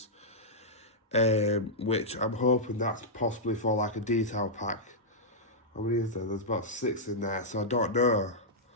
which I'm hoping that's possibly for like a detail pack. How many is there? There's about 6 in there, so I don't know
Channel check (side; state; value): both; normal; correlation -0.10